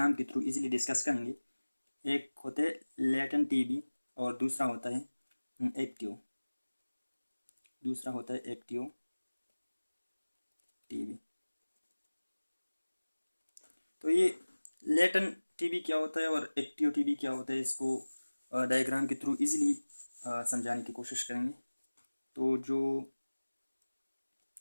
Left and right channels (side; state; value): both; inverted; correlation -1.00